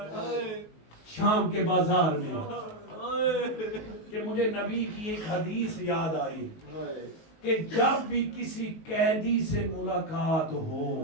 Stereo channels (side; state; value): right; late; 19 ms